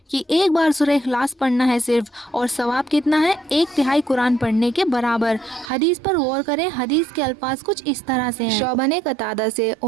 कि एक बार सूरह इखलास पढ़ना है सिर्फ, और सवाब कितना है 1/3 कुरान पढ़ने के बराबर। हदीस पर गौर करें। हदीस के अल्फाज कुछ इस तरह से हैं। शोबा ने कतादा से,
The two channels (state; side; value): drops out; left; at 5.7 s